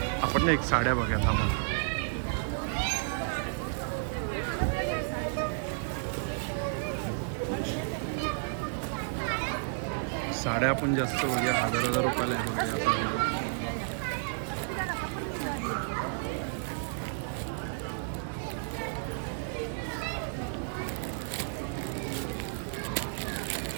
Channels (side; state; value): left; silent; digital silence